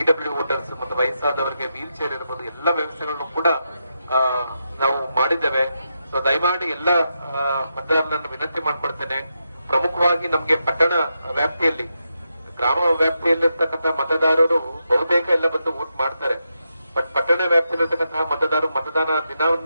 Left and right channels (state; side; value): inverted; both; correlation -0.85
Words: ವೋಟರ್ಸ್ ಮತ್ತೆ ವಯಸ್ಸಾದವರಿಗೆ ವೀಲ್ ಚೇರ್ ಇರಬಹುದು, ಎಲ್ಲ ವ್ಯವಸ್ಥೆಗಳನ್ನು ಕೂಡ ನಾವು ಮಾಡಿದ್ದೇವೆ. ಸೊ ದಯಮಾಡಿ ಎಲ್ಲ ಮತದಾರರನ್ನು ವಿನಂತಿ ಮಾಡ್ಕೊಳ್ತೇನೆ. ಪ್ರಮುಖವಾಗಿ ನಮ್ಗೆ ಪಟ್ಟಣ ವ್ಯಾಪ್ತಿಯಲ್ಲಿ, ಗ್ರಾಮ ವ್ಯಾಪ್ತಿಯಲ್ಲಿರ್ತಕ್ಕಂಥ ಮತದಾರರು ಬಹುತೇಕ ಎಲ್ಲ ಬಂದು ವೋಟ್ ಮಾಡ್ತಾರೆ. ಬಟ್ ಪಟ್ಟಣ ವ್ಯಾಪ್ತಿಯಲ್ಲಿರ್ತಕ್ಕಂತಹ ಮತದಾರರು ಮತದಾನ